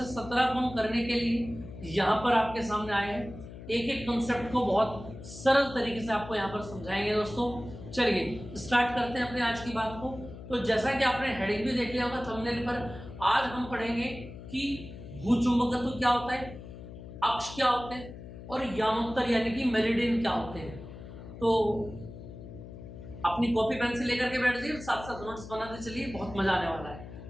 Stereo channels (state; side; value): noise; left; hum, 13 dB below the sound